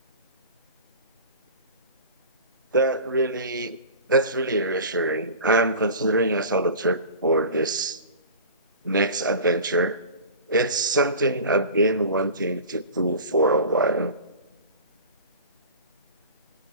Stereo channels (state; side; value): inverted; both; correlation -0.35